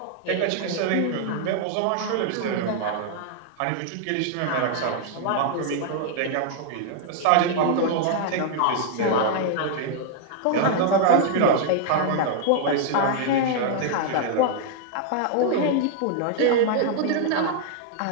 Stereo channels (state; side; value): different; both; correlation 0.00